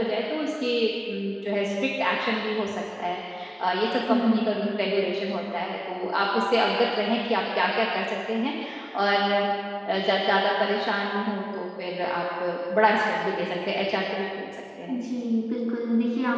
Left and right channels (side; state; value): both; identical; correlation 1.00